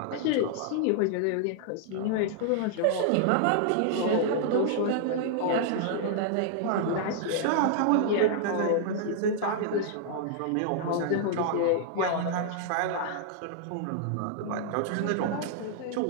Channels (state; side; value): different; both; correlation -0.01